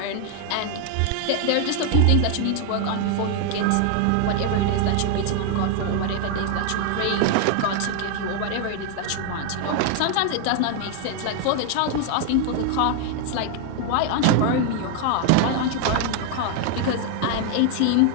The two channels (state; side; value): different; both; correlation 0.00